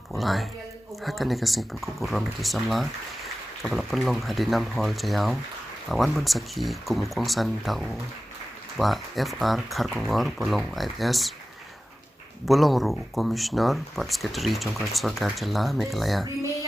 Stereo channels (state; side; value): normal; both; correlation 0.95